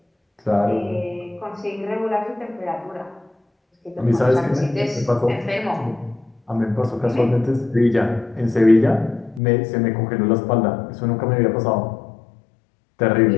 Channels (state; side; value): drops out; right; at 9.4 s